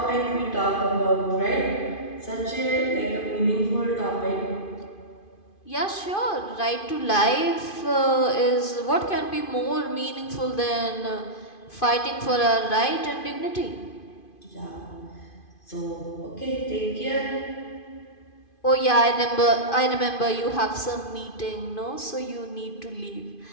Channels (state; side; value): late; right; 2.5 ms